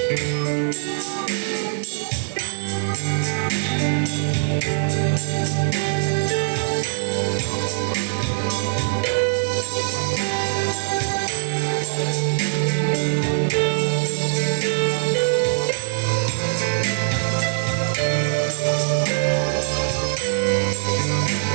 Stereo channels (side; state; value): left; silent; 64 dB below the other